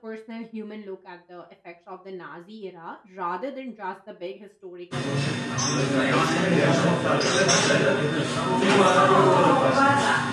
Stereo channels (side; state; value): both; identical; correlation 1.00